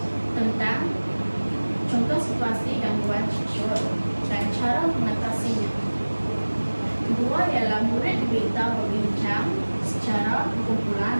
tentang contoh situasi gangguan seksual dan cara mengatasinya. Kedua ialah murid diminta berbincang secara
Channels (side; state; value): both; inverted; correlation -1.00